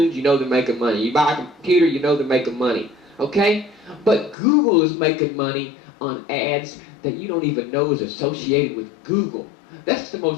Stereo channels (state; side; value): drops out; right; at 4.4 s